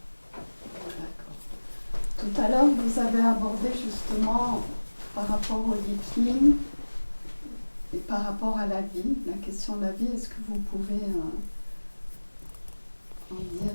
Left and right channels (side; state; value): both; inverted; correlation -1.00